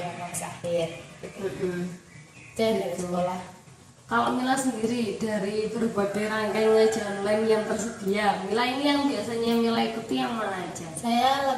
kelas akhir gitu. Jadi dari sekolah. Kalau Mila sendiri dari berbagai rangkaian ngaji online yang tersedia, Mila ini yang biasanya Mila ikuti yang mana aja? Saya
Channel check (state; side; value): identical; both; correlation 1.00